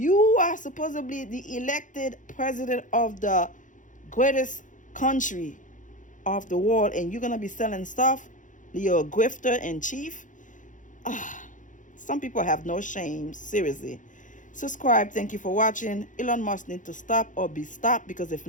are supposedly the elected president of the greatest country of the world, and you're going to be selling stuff? You're a grifter in chief? Some people have no shame. Seriously. Subscribe. Thank you for watching. Elon Musk needs to stop or be stopped, because if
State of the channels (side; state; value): right; late; 0.37 ms